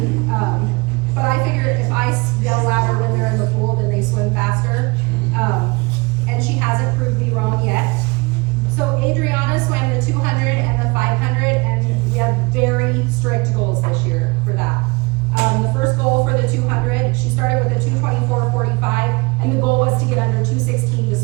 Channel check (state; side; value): quieter; left; 26.2 dB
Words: But I figure if I yell louder when they're in the pool, then they swim faster. And she hasn't proved me wrong yet. So Adriana swam the 200 and the 500 and